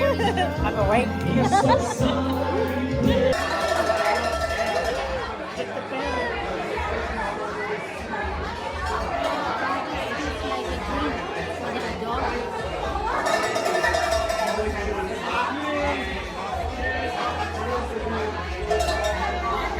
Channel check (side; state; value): both; identical; correlation 1.00